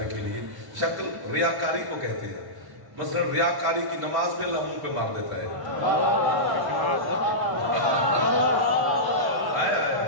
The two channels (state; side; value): late; left; 1.1 ms